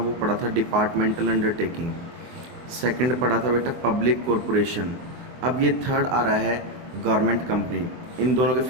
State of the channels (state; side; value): late; left; 24 ms